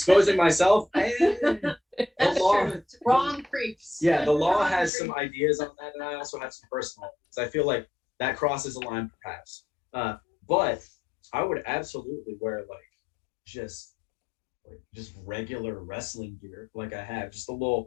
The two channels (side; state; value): right; drops out; at 4.9 s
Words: myself, the law, wrong creeps. Yeah, the law has some ideas on that, and I also have some personal ones. I feel like that crosses a line, perhaps. But I would absolutely wear like just regular wrestling gear, like I have, just the